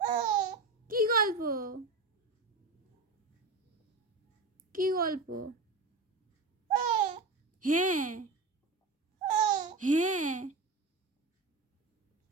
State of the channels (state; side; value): quieter; left; 3.7 dB